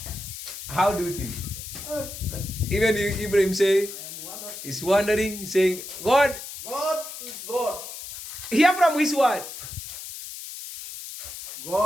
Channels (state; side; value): noise; left; hiss, 10 dB below the sound